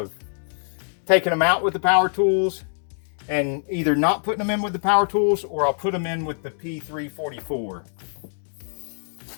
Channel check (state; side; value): silent; right; digital silence